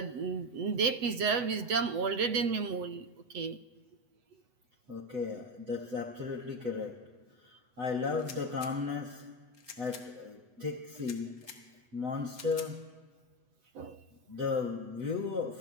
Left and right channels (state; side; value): late; left; 8.0 ms